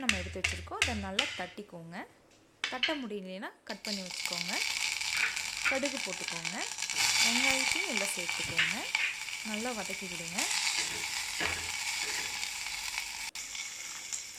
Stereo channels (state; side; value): identical; both; correlation 1.00